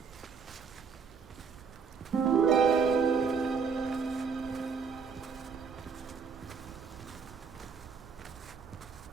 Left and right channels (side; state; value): left; quieter; 5.8 dB